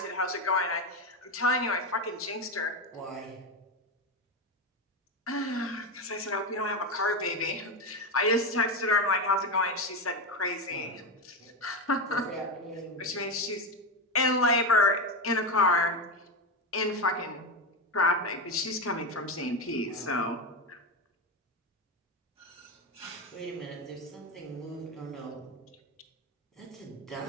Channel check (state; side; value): normal; both; correlation 0.13